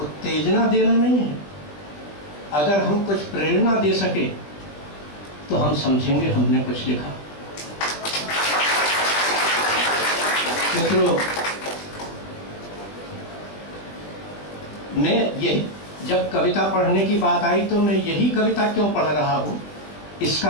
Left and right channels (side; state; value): right; late; 20 ms